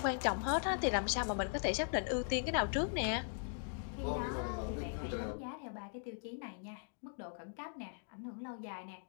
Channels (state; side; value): silent; right; digital silence